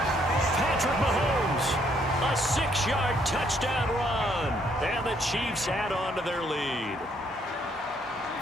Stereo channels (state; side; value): normal; both; correlation 0.69